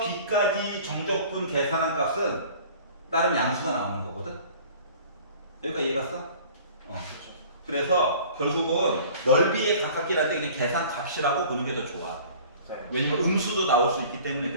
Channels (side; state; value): both; inverted; correlation -0.47